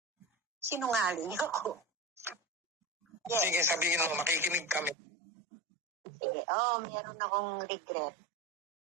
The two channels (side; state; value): left; drops out; at 5.0 s